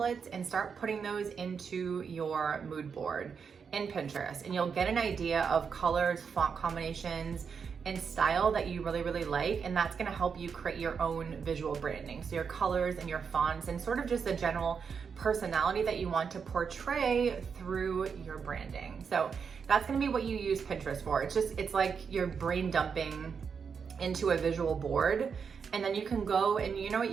and start putting those into your mood board in Pinterest, and you'll get an idea of colors, font combinations, and style that you really, really like, and that's gonna help you create your own visual branding. So your colors and your fonts and sort of just the general personality that you want to portray through your branding. So that's gonna be what you use Pinterest for. It's like you're brain dumping into a visual board, and then you can go and you know what,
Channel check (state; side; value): quieter; left; 6.2 dB